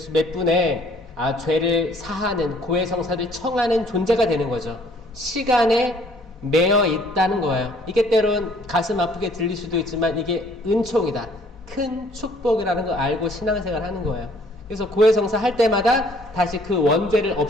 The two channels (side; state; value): both; normal; correlation 0.60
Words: 분에 죄를 사하는 고해성사를 청하는 존재가 되는 거죠. 시간에 매여 있다는 거예요. 이게 때론 가슴 아프게 들릴 수도 있지만 이게 은총이다. 큰 축복이라는 걸 알고 신앙생활 하는 거예요. 그래서 고해성사 할 때마다 다시 그 원죄를